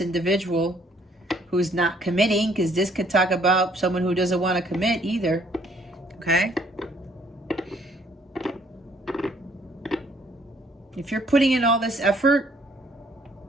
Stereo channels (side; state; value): both; normal; correlation 0.63